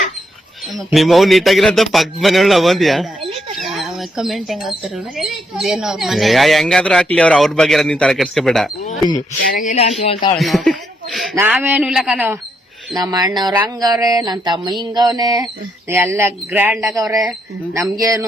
ನಿಮ್ಮವ್ ನೀಟಾಗಿರಂತ ಪಕ್ಕದ ಮನೆಯೊಳ ಬಂದ್ಯಾ? ಕಮೆಂಟ್ ಹೆಂಗ್ ಹಾಕ್ತಾರ ಇದೇನೋ ಅವ್ರ ಮನೆ ಹೆಂಗಾದ್ರೂ ಹಾಕ್ಲಿ ಅವ್ರ ಬಗ್ಗೆ ನೀನ್ ತಲೆ ಕೆಡ್ಸ್ಕೊಬೇಡ. ಚೆನ್ನಾಗಿಲ್ಲ ಅಂತ ಹೇಳ್ತಾವಳೆ ನೋಡ್. ನಾವೇನು ಇಲ್ಲ ಕಣೋ, ನಮ್ಮ ಅಣ್ಣವ್ರ ಹಂಗವ್ರೆ, ನನ್ ತಮ್ಮ ಹಿಂಗವ್ನೆ, ಎಲ್ಲ ಗ್ರ್ಯಾಂಡ್ ಆಗವ್ರೆ.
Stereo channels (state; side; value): normal; both; correlation 0.77